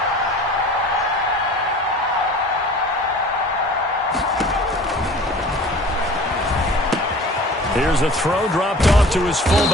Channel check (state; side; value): normal; both; correlation 0.44